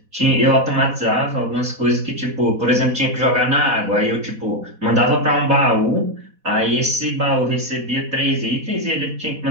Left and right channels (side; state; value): left; late; 4.1 ms